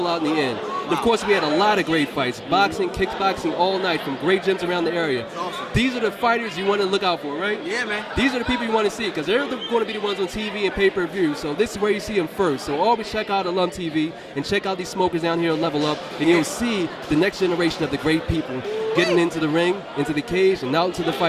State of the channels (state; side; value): identical; both; correlation 1.00